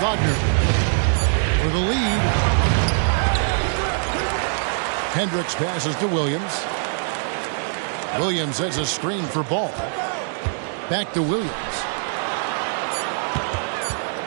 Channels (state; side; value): silent; left; digital silence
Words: For the lead. Hendricks passes to Williams. Williams has a screen for Ball. Back to Williams.